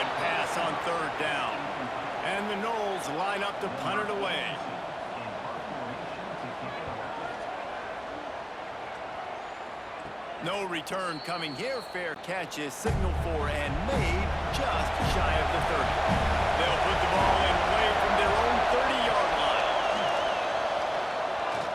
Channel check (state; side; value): identical; both; correlation 1.00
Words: pass on 3rd down. And the Noles line up to punt it away. No return coming here. Fair catch is signaled for and made just shy of the 30. They'll put the ball in play from their own 30-yard line.